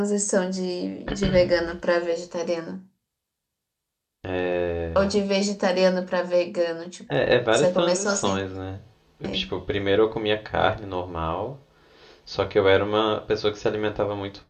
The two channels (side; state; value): both; identical; correlation 1.00